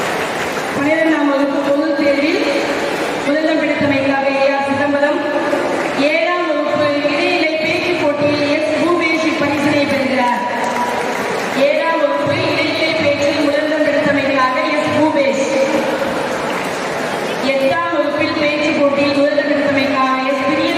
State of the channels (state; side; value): identical; both; correlation 1.00